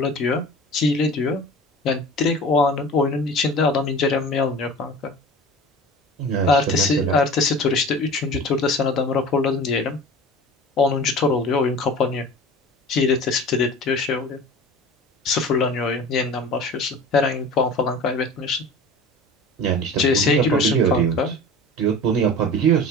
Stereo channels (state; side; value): normal; both; correlation 0.38